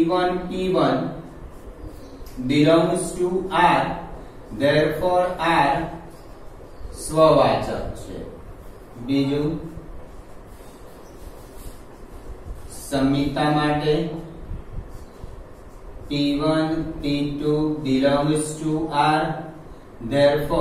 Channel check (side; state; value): both; identical; correlation 1.00